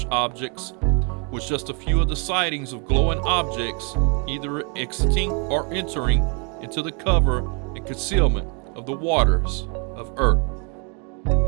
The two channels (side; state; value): left; quieter; 36.2 dB